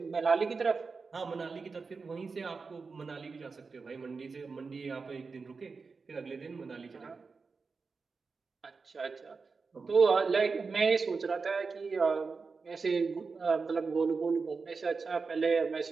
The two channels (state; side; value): quieter; left; 4.6 dB